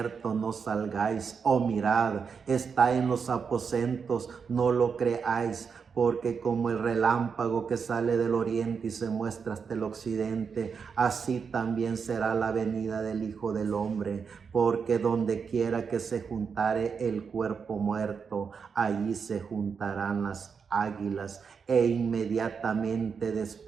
no salgáis; o mirad, está en los aposentos, no lo creáis. Porque como el relámpago que sale del oriente y se muestra hasta el occidente, así también será la venida del Hijo del Hombre. Porque donde quiera que se juntare el cuerpo muerto, allí se juntarán las águilas. E inmediatamente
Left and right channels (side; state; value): left; quieter; 6.0 dB